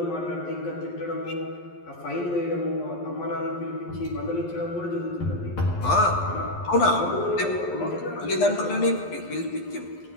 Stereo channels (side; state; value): right; late; 11 ms